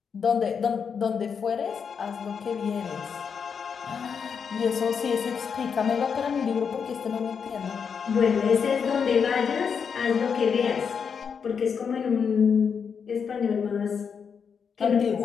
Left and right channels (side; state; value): right; quieter; 6.5 dB